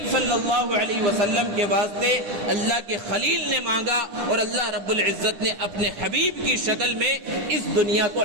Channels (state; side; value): late; left; 10 ms